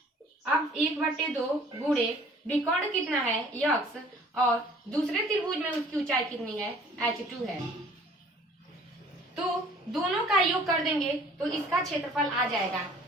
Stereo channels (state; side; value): normal; both; correlation 0.53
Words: अब 1/2 गुणे विकर्ण कितना है x और दूसरे त्रिभुज में उसकी ऊंचाई कितनी है h2 है, तो दोनों का योग कर देंगे तो इसका क्षेत्रफल आ जाएगा।